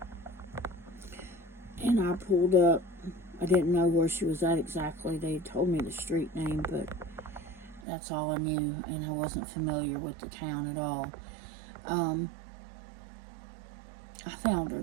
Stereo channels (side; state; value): left; drops out; at 7.8 s